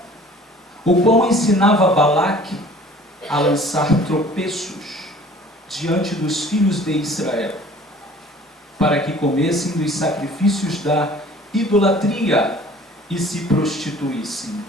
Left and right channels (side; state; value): both; normal; correlation 0.49